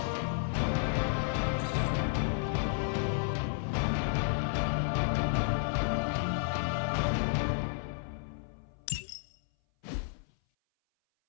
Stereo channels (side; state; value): right; silent; 56 dB below the other